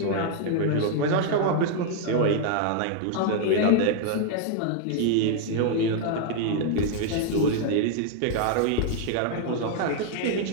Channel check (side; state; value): both; different; correlation 0.00